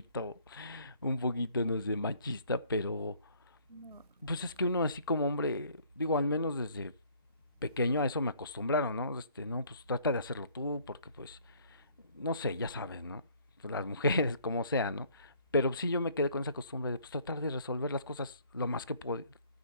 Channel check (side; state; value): both; inverted; correlation -0.59